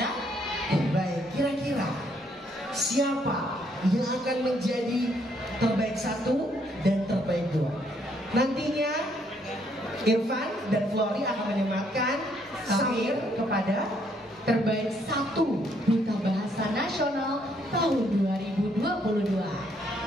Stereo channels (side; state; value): both; normal; correlation 0.70